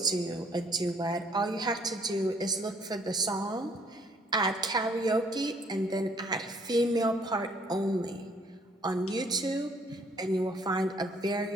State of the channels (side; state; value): both; normal; correlation 0.63